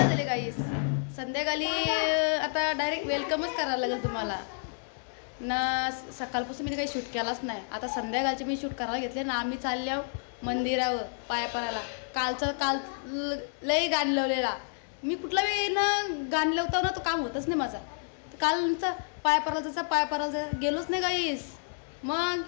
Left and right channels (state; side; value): silent; right; 58 dB below the other